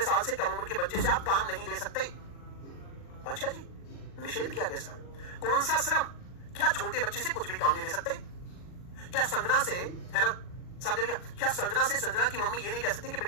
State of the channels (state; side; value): late; right; 40 ms